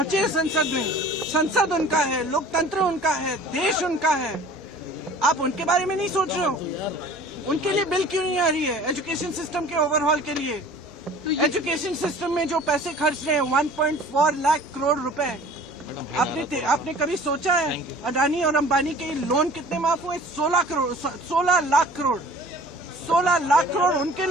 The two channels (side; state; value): both; normal; correlation 0.47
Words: हैं संसद में। संसद उनका है, लोकतंत्र उनका है, देश उनका है। आप उनके बारे में नहीं सोच रहे हो? उनके लिए बिल क्यों नहीं आ रही है? एजुकेशन सिस्टम के ओवरहॉल के लिए, एजुकेशन सिस्टम में जो पैसे खर्च रहे हैं 1.4 लाख करोड़ रुपए, आपने कभी सोचा है अडानी और अंबानी के लोन कितने माफ हुए? 16 लाख करोड़ उनके